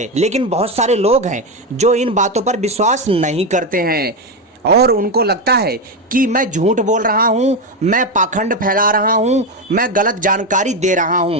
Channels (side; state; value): both; normal; correlation 0.11